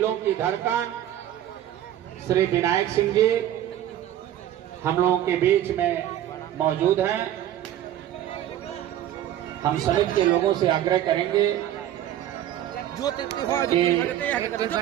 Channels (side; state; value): left; quieter; 11.9 dB